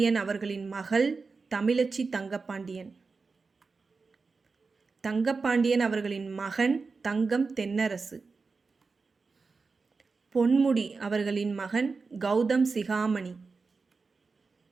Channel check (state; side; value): quieter; left; 4.4 dB